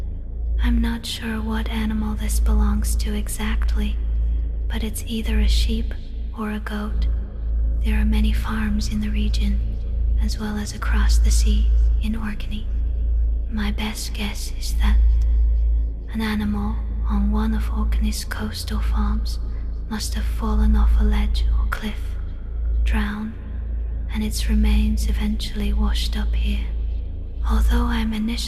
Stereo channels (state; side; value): identical; both; correlation 1.00